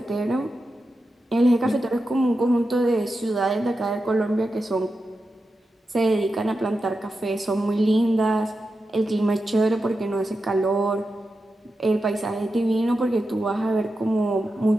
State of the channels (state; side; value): normal; both; correlation 0.90